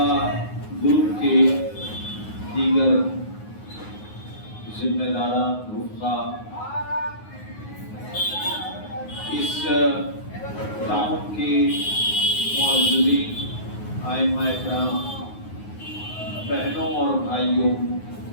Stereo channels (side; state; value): right; late; 9.5 ms